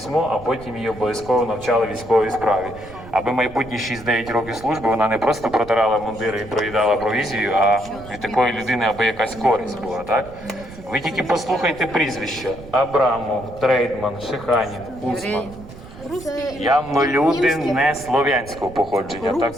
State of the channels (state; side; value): noise; right; rumble, 16 dB below the sound